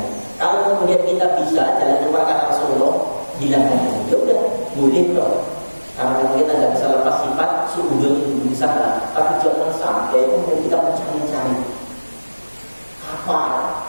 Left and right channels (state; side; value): inverted; both; correlation -1.00